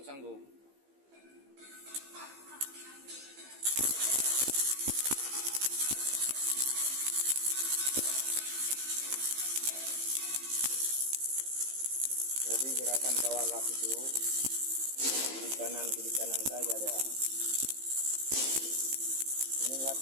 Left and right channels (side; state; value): left; late; 15 ms